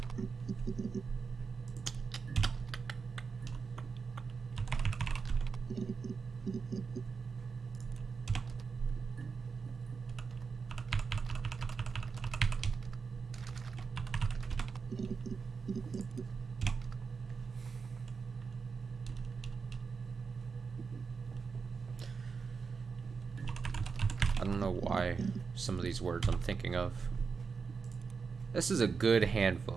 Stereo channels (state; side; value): quieter; left; 5.3 dB